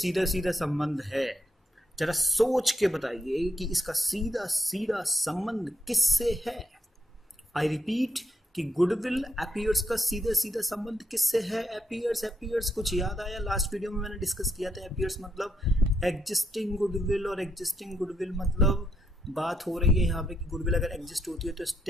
सीधा संबंध है, जरा सोच के बताइए कि इसका सीधा सीधा संबंध किससे है। आई रिपीट कि गुडविल अपीयर्स का सीधा सीधा संबंध किससे है। अपीयर्स कुछ याद आया? लास्ट वीडियो में मैंने डिस्कस किया था। अपीयर्स मतलब एग्जिस्टिंग गुडविल और एग्जिस्टिंग गुडविल मतलब बात हो रही है यहाँ पे कि गुडविल अगर एग्जिस्ट होती है तो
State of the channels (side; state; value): both; normal; correlation 0.78